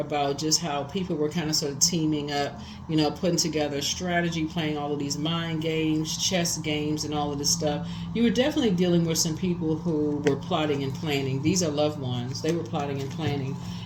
just how people were kind of sort of teaming up, you know, putting together strategy, playing all of these mind games, chess games, and all of this stuff. You were definitely dealing with some people who were plotting and planning. These are loved ones. They were plotting and planning,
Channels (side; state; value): both; identical; correlation 1.00